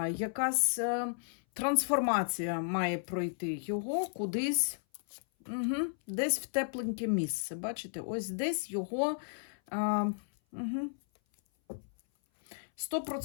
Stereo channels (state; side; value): silent; right; 55 dB below the other